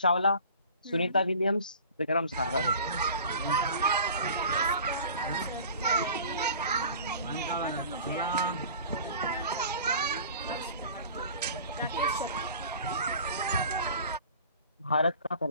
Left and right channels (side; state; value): both; inverted; correlation -0.43